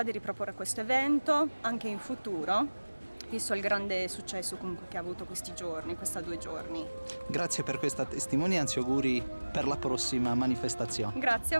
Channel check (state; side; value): inverted; both; correlation -1.00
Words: di riproporre questo evento anche in futuro, visto il grande successo comunque che ha avuto questi 2 giorni. Grazie per questa testimonianza e auguri per la prossima manifestazione. Grazie a